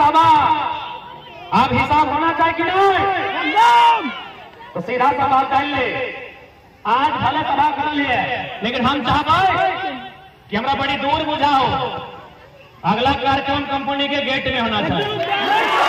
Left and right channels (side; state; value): both; identical; correlation 1.00